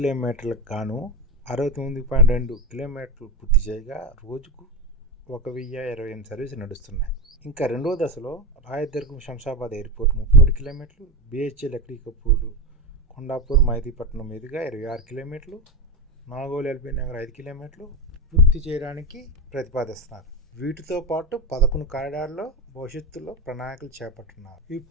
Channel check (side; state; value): both; normal; correlation 0.17